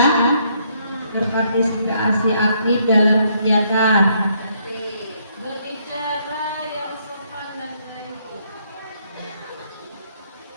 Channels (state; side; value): inverted; both; correlation -0.71